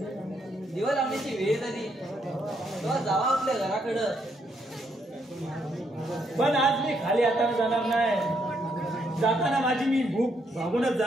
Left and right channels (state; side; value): normal; both; correlation 0.74